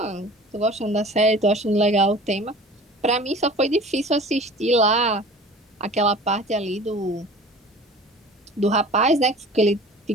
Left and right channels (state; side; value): normal; both; correlation 0.43